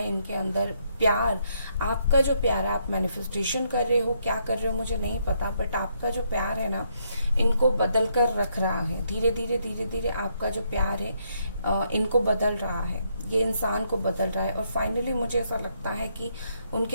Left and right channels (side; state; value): both; inverted; correlation -0.74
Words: इनके अंदर। प्यार, आपका जो प्यार आप मैनिफेस्टेशन कर रहे हो, क्या कर रहे हो मुझे नहीं पता, बट आपका जो प्यार है ना, इनको बदल कर रख रहा है। धीरे धीरे धीरे धीरे आपका जो प्यार है इनको बदल रहा है, ये इंसान को बदल रहा है, और फाइनली मुझे ऐसा लगता है कि